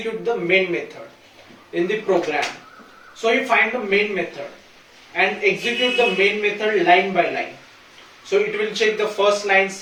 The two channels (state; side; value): identical; both; correlation 1.00